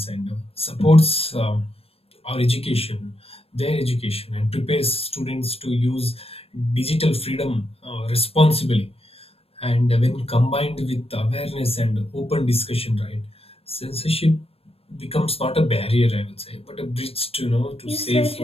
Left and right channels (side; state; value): right; late; 0.28 ms